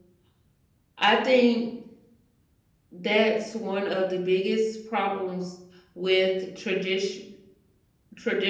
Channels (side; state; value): both; identical; correlation 1.00